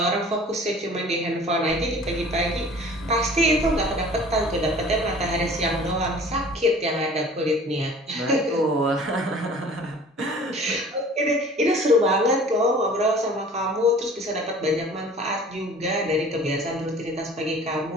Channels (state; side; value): normal; both; correlation 0.46